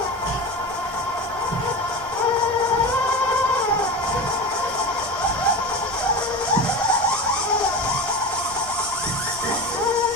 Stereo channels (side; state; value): both; normal; correlation 0.27